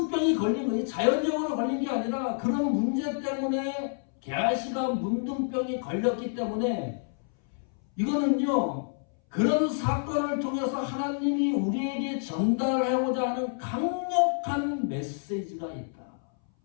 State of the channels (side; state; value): right; silent; 59 dB below the other